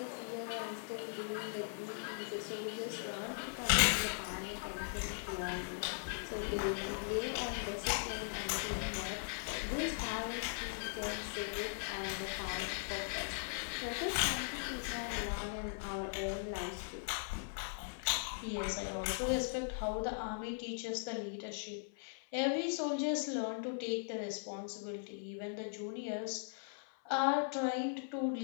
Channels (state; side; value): silent; right; 52 dB below the other